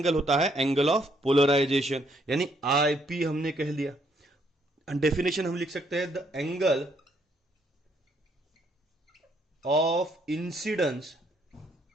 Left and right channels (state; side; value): normal; both; correlation 0.70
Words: होता है एंगल ऑफ पोलराइजेशन। यानी आईपी हमने कह दिया। डेफिनेशन हम लिख सकते हैं, the angle of incidence